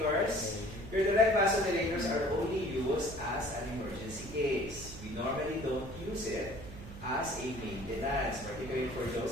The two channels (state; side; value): noise; right; hum, 14 dB below the sound